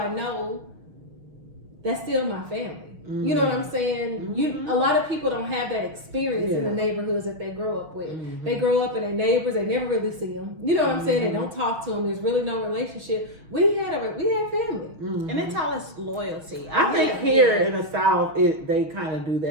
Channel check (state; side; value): late; left; 6.3 ms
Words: know, that's still my family. You know what I'm saying? A lot of people don't have that experience in the neighborhoods that they grow up with. They grow up and their neighbors, they never really see them. You know what I'm saying? They don't talk to them. There's really no relationship. We had family, and it's all this loyalty. I think here in the South, they kind of do